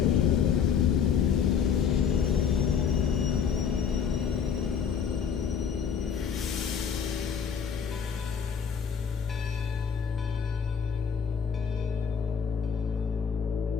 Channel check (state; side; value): quieter; right; 7.0 dB